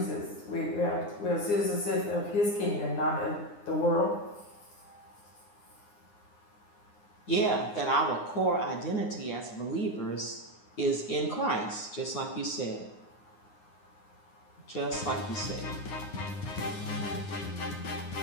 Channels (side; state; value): right; late; 9.7 ms